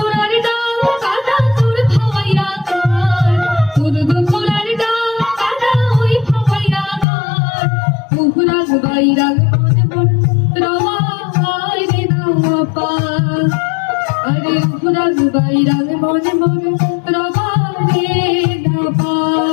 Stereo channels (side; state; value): right; drops out; at 7.1 s